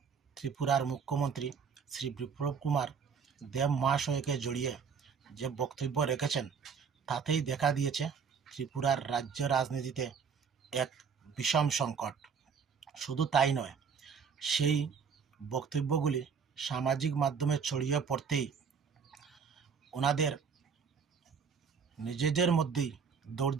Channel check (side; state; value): left; quieter; 6.2 dB